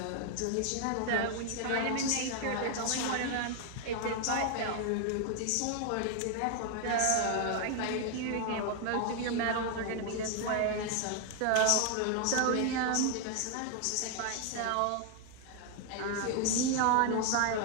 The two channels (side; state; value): both; different; correlation 0.00